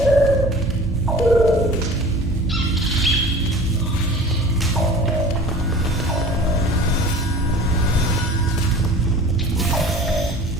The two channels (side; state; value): both; normal; correlation 0.42